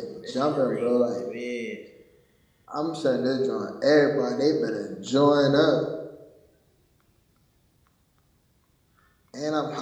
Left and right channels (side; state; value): both; identical; correlation 1.00